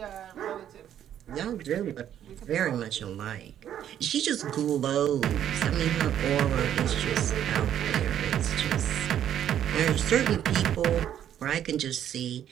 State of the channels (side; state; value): left; quieter; 10.3 dB